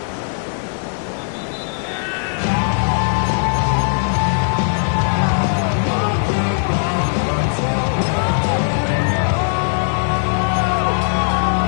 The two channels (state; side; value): silent; right; digital silence